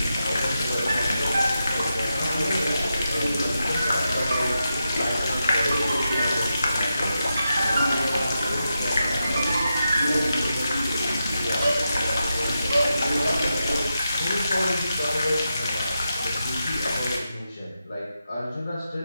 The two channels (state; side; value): inverted; both; correlation -0.87